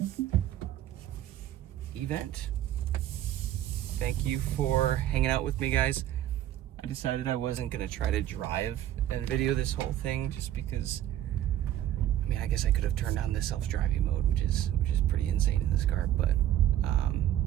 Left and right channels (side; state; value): left; quieter; 12.3 dB